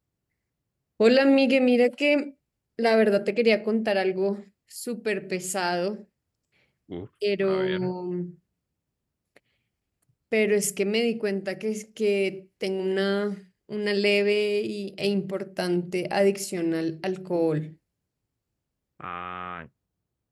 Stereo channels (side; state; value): both; identical; correlation 1.00